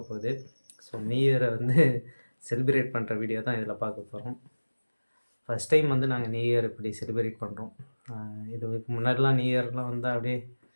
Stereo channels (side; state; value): both; inverted; correlation -1.00